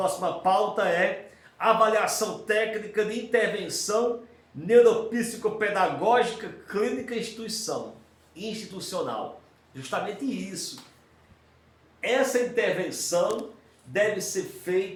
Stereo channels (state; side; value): identical; both; correlation 1.00